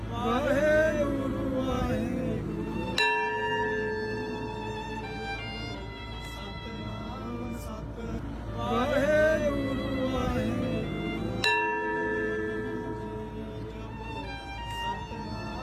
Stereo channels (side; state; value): both; identical; correlation 1.00